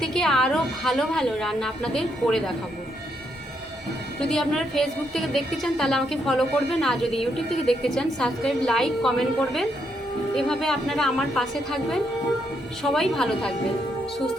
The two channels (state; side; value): normal; both; correlation 0.77